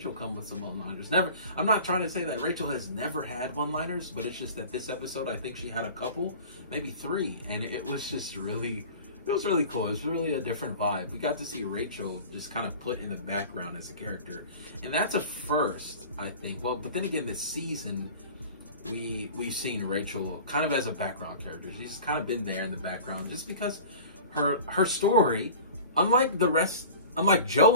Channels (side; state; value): both; inverted; correlation -0.40